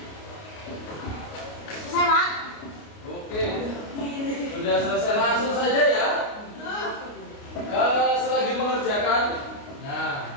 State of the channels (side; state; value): right; late; 29 ms